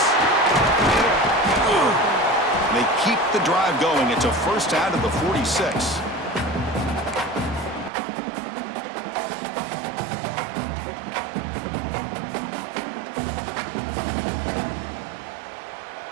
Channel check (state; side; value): drops out; left; at 7.9 s